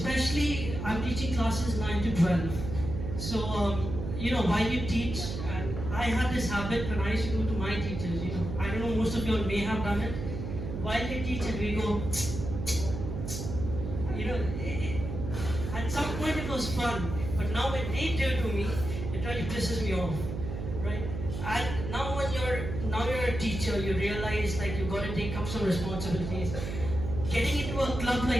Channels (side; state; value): right; noise; hum, 5 dB below the sound